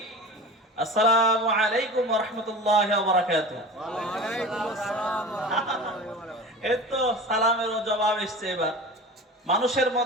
আসসালামু আলাইকুম ওয়া রাহমাতুল্লাহি ওয়া বারাকাতুহু। ওয়ালাইকুম আসসালাম ওয়া রাহমাতুল্লাহি ওয়া বারাকাতুহু। এই তো সালামেরও জবাব এসছে। এবার মানুষের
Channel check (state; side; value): normal; both; correlation 0.35